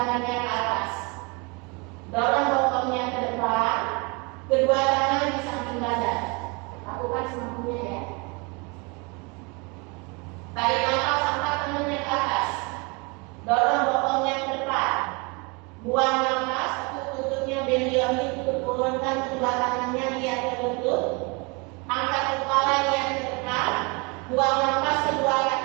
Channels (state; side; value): quieter; left; 29.8 dB